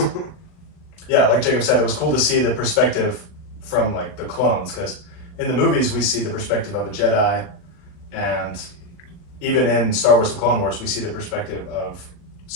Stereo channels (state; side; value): late; right; 39 ms